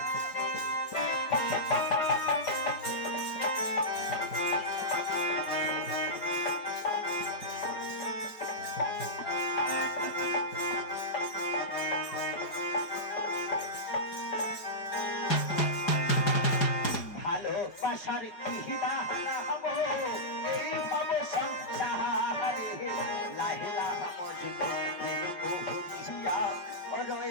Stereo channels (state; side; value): late; right; 4.9 ms